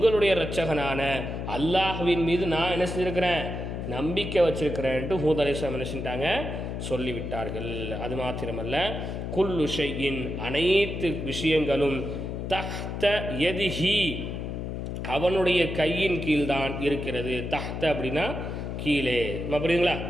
இரட்சகனான அல்லாஹ்வின் மீது நான் என்ன செஞ்சிருக்கிறேன், நம்பிக்கை வச்சிருக்கிறேன்ட்டு ஹூத் அலைஹிஸ்ஸலாம் என்ன செஞ்சிட்டாங்க, சொல்லிவிட்டார்கள். அது மாத்திரமல்ல, குல்லு ஷைஇன், அனைத்து விஷயங்களும், தஹ்த யதிஹி, அவனுடைய கையின் கீழ்தான் இருக்கிறது. தஹ்த அப்படின்னா கீழே, புரியுதுங்களா?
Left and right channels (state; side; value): noise; left; hum, 5 dB below the sound